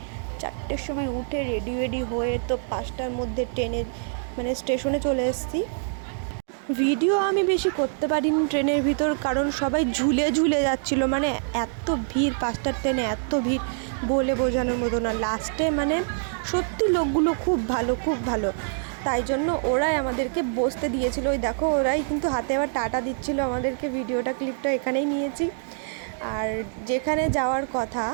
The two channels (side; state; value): left; silent; digital silence